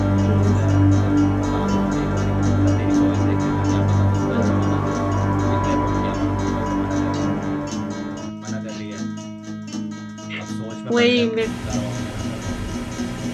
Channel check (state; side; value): identical; both; correlation 1.00